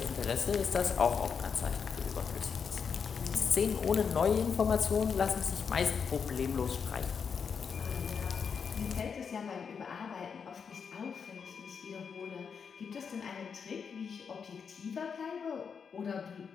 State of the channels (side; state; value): right; quieter; 6.3 dB